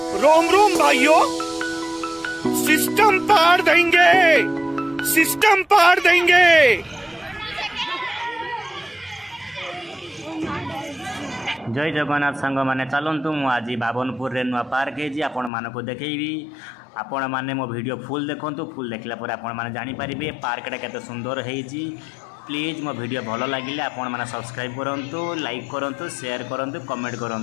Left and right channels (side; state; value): right; drops out; at 15.5 s